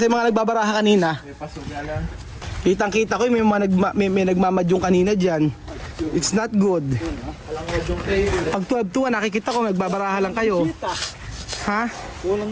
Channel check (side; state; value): both; identical; correlation 1.00